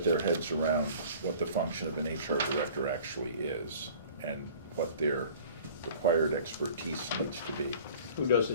their heads around what the function of an HR director actually is and what their required expertise needs to be. Who does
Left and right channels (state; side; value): inverted; both; correlation -0.47